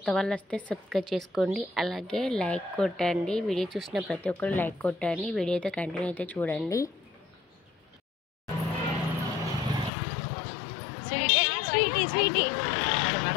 వాళ్ళు వస్తే సబ్స్క్రైబ్ చేసుకోండి, అలాగే లైక్ కొట్టండి. వీడియో చూసిన ప్రతి ఒక్కరు లైక్ కొట్టండి. వీడియో అయితే కంటిన్యూ అయితే చూడండి. స్వీటీ స్వీటీ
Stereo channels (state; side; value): drops out; right; at 9.9 s